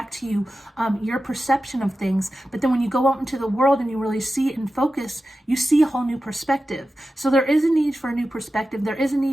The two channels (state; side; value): normal; both; correlation 0.93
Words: to you your perception of things. But then when you go out into the world and you really see it and focus, you see a whole new perspective. So there is a need for a new perspective. There is a